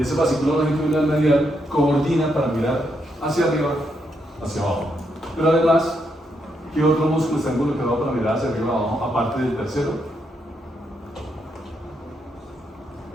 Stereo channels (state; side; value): normal; both; correlation 0.79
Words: ese fascículo longitudinal medial coordina para mirar hacia arriba, hacia abajo. Pero además, ¿qué otro músculo está involucrado para mirar hacia arriba abajo, aparte del tercero?